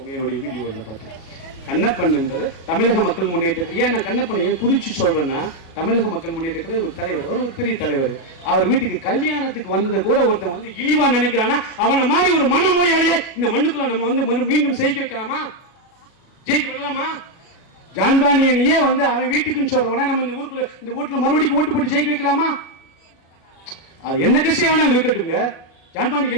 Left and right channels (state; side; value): late; right; 37 ms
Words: என்னுடைய வீடியோவில் பார்த்து கண்ணப்பன் என்பது தமிழக மக்கள் முன்னேற்றத்தில் ஏன் நான் கண்ணப்பன் ஏன் குறிச்சு சொல்றேன்னா, தமிழக மக்கள் முன்னேற்றத்தில் ஒரு தலைவர், ஒரு பெரிய தலைவர். அவர் வீட்டுக்கு கல்யாணத்துக்கு வந்ததை கூட ஒருத்தன் இழிவா நினைக்கிறானா அவனை மாதிரி ஒரு மனநோயாளியை இந்த மண்ணுக்குள்ள நம்ம மீண்டும் ஜெயிக்க வைக்கலாமா? ஜெயிக்க விடலாமா? ஜான் பாண்டியனையே அவன் வீட்டுக்குன்னு சொல்றவன நம்ம இந்த வீட்டுல மறுபடியும் ஓட்டு போட்டு ஜெயிக்க வைக்கலாமா? அது என்ன கட்சியை வேணாலும் இருக்கட்டுங்க. ஜான் பாண்டியன்